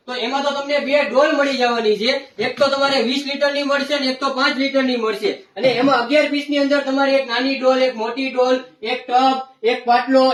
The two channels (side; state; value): both; identical; correlation 1.00